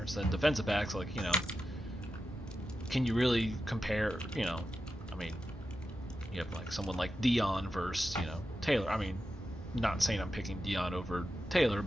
and defensive backs, like, can you really compare, I mean, you have, like, someone like Dion versus, Taylor. I mean, not saying I'm picking Dion over Taylor,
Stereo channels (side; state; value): both; normal; correlation 0.90